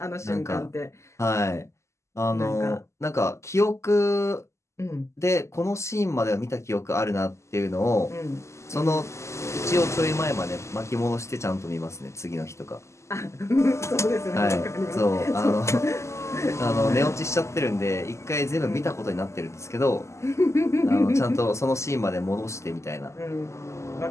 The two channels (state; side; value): late; right; 0.13 ms